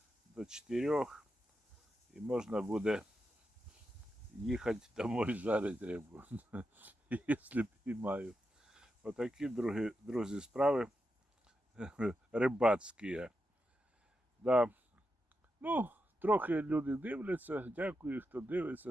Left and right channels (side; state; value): both; normal; correlation 0.87